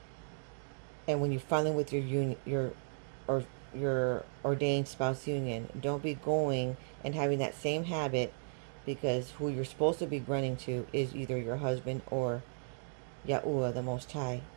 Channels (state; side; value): silent; left; digital silence